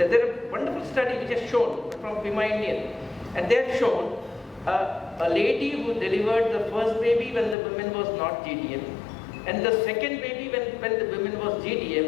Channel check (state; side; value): drops out; right; at 7.6 s